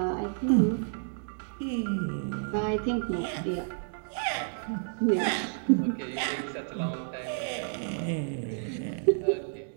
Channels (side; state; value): left; silent; 58 dB below the other